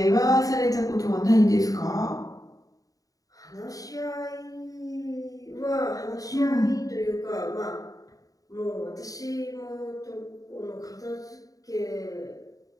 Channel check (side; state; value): right; late; 0.17 ms